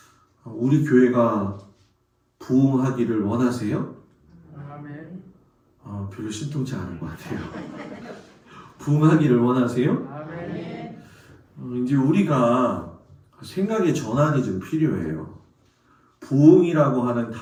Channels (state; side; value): identical; both; correlation 1.00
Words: 우리 교회가 부흥하기를 원하세요? 아멘. 별로 신통치 않은 것 같아요. 부흥하기를 원하세요? 아멘. 이제 우리가 생각의 전환이 좀 필요해요. 부흥이라고 하는